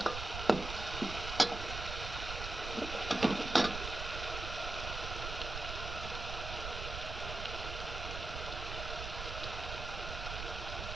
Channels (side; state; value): right; noise; rumble, 6 dB below the sound